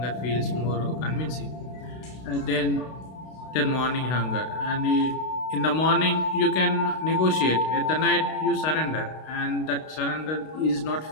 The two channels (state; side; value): late; right; 32 ms